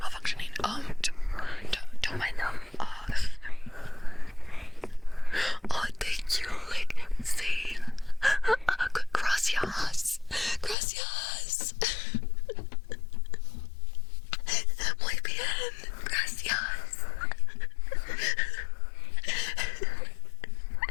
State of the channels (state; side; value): drops out; right; at 10.8 s